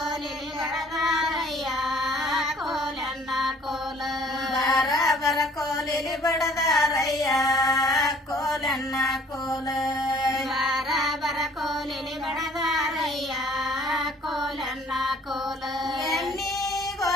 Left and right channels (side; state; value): both; normal; correlation 0.56